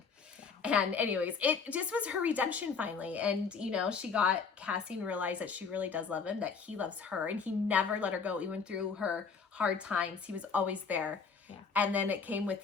And anyways, it just was her redemption finally. And, you know, she got Cassian realized that she really does love him, that he loves her, and he never let her go, even through her hard times. He was always there. Yeah. And then it came with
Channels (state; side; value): quieter; right; 5.5 dB